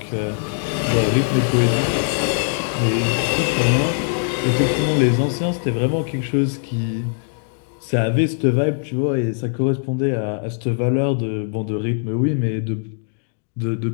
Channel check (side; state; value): right; silent; digital silence